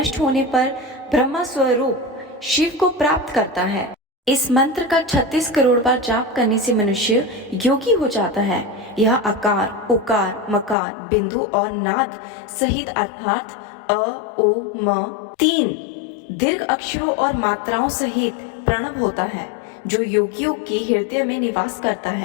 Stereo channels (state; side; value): drops out; right; at 10.8 s